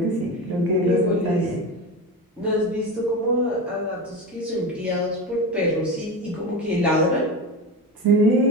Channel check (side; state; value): both; normal; correlation 0.24